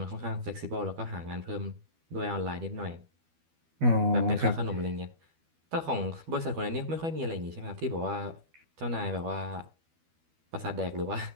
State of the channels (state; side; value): late; left; 12 ms